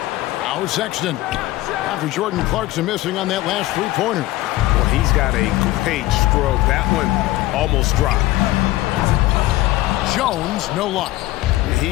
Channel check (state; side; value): quieter; right; 17.4 dB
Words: Now Sexton. After Jordan Clarkson missing on that last three-pointer. Well, he's got a great stroke. That one almost dropped. Jones, no luck.